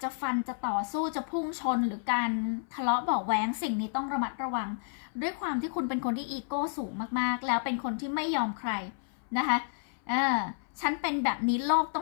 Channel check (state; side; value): silent; right; 57 dB below the other